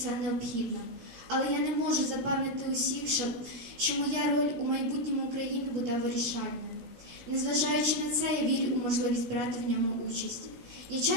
необхідно. Але я не можу запевнити усіх, що моя роль у майбутньому України буде вирішальною. Незважаючи на це, я вірю у можливість брати в ньому участь. Я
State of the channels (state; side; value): late; left; 17 ms